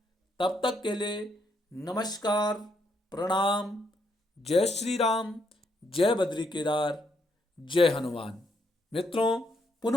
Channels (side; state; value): both; normal; correlation 0.75